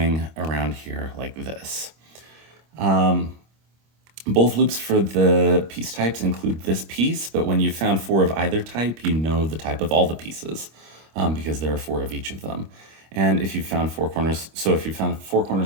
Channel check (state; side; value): late; left; 26 ms